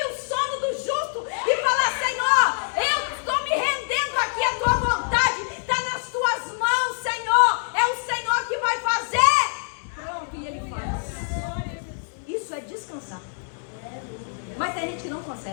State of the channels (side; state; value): right; silent; digital silence